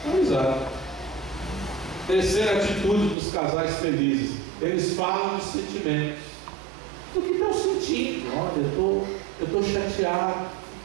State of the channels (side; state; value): left; drops out; at 3.2 s